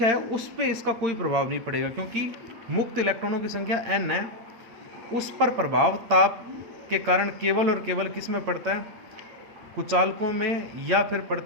है उस पर इसका कोई प्रभाव नहीं पड़ेगा, क्योंकि मुक्त इलेक्ट्रॉनों की संख्या n है, उस पर प्रभाव ताप के कारण केवल और केवल किस में पड़ता है, कुचालकों में, या फिर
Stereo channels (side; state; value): left; late; 8.8 ms